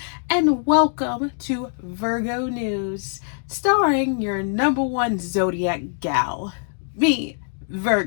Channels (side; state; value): right; silent; 63 dB below the other